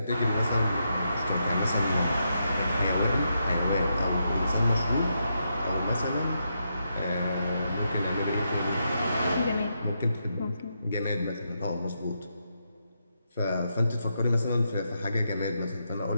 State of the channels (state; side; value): inverted; both; correlation -0.82